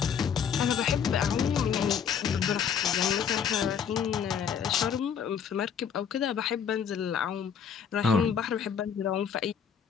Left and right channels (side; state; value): right; quieter; 7.6 dB